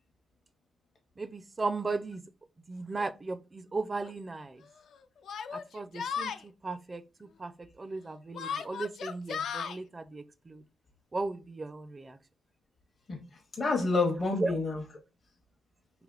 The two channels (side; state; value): both; normal; correlation 0.81